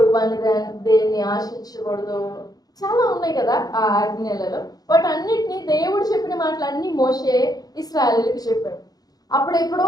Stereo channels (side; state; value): right; late; 0.19 ms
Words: వాని దేన్ని ఆశించకూడదు, చాలా ఉన్నాయి కదా ఆ ఆజ్ఞలలో. బట్ అన్నిటినీ దేవుడు చెప్పిన మాటలన్నీ మోషే ఇశ్రాయేలుకి చెప్పాడు.